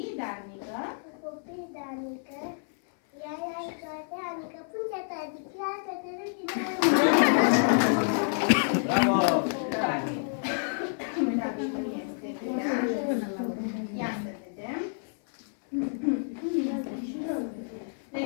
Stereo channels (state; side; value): silent; right; 57 dB below the other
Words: darnică. Copii de anică, ea e toate anică, punte ta, diclează, te râdi de Bravo! Uitați cum este bine. Ia să vedem. Ne